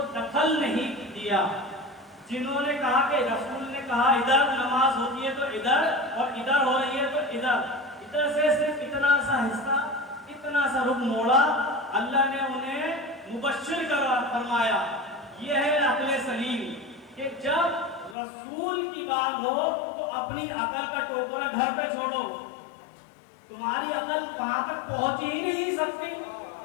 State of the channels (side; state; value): right; drops out; at 18.2 s